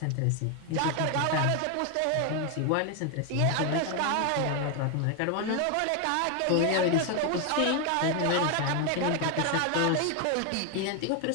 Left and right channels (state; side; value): different; both; correlation 0.01